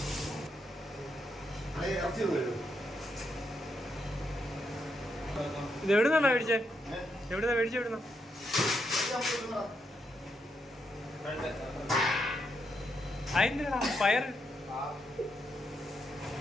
ഇത് എവിടുന്നാ മേടിച്ചേ? എവിടുന്നാ മേടിച്ചേ? എവിടുന്ന അതിന്റെ പയർ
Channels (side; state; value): both; normal; correlation 0.80